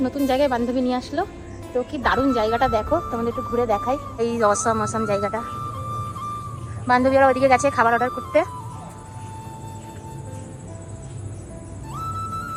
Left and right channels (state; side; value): identical; both; correlation 1.00